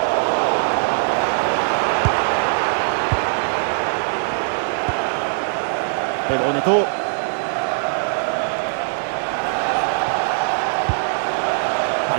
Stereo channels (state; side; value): silent; left; digital silence